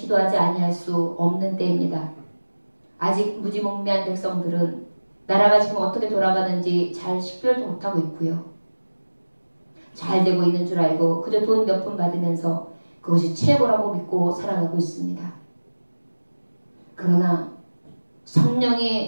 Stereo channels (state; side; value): inverted; both; correlation -1.00